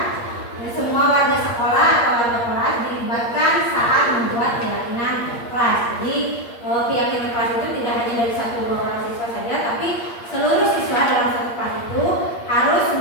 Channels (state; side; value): late; right; 8.5 ms